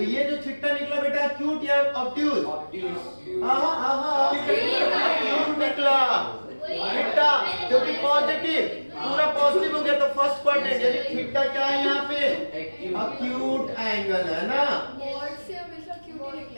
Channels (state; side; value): inverted; both; correlation -1.00